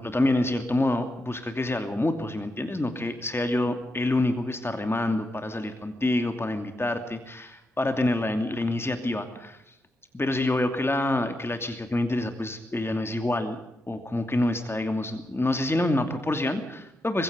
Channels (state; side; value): normal; both; correlation 0.85